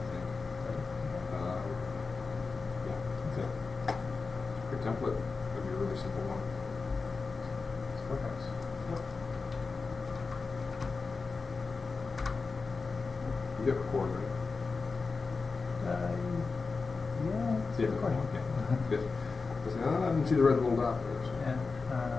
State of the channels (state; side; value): quieter; right; 4.4 dB